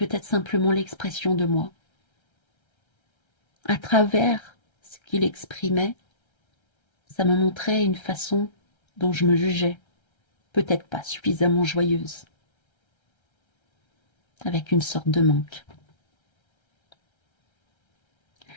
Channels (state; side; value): late; right; 1.3 ms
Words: simplement l'expression de moi. À travers ce qu'il exprimait, ça me montrait une façon dont je me jugeais, peut-être pas suffisamment joyeuse, avec une sorte de manque.